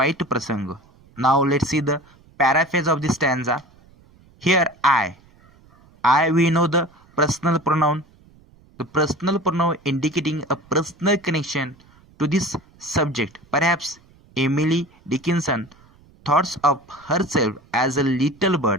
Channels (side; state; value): right; noise; rumble, 28 dB below the sound